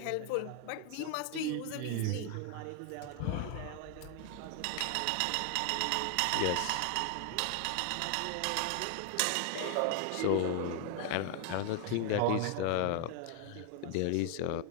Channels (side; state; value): both; different; correlation 0.00